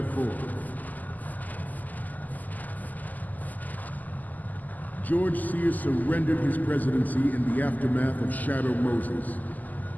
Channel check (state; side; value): late; right; 0.082 ms